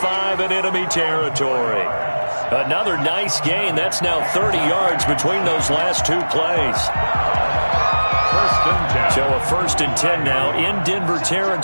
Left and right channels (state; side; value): inverted; both; correlation -1.00